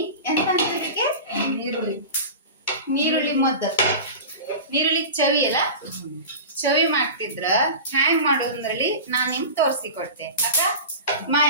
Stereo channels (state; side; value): inverted; both; correlation -0.31